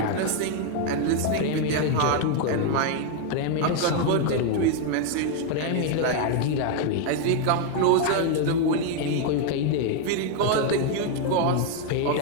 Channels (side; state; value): both; different; correlation 0.01